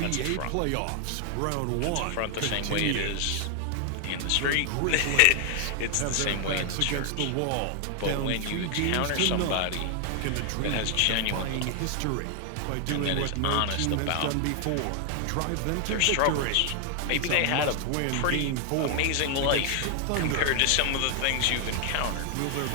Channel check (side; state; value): both; different; correlation 0.00